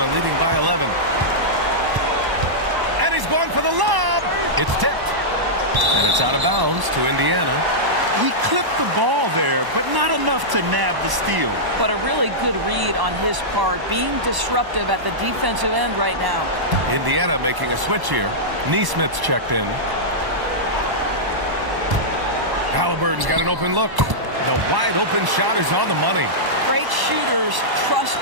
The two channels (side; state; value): left; late; 1.0 ms